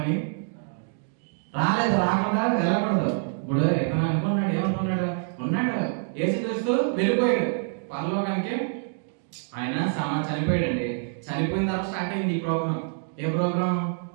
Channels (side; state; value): left; silent; 61 dB below the other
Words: రాలేదు. రాకుండా వెళ్ళకూడదు. ఇప్పుడు ఎతను అనుకున్నాడు, ఏమనుకున్నాడు? ఉన్నాడు యేసుక్రీస్తు వెళ్ళిపోయాడు పరలోకానికి. ఆయన చనిపోయాడండి. చనిపోయిన తర్వాత స్టార్ట్ అయింది ఈ ప్రోగ్రామ్. ఏ ప్రోగ్రామ్?